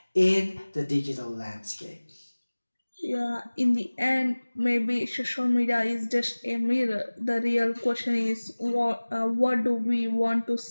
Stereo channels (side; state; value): both; inverted; correlation -1.00